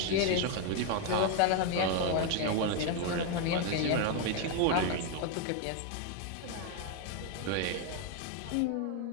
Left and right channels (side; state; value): both; different; correlation 0.01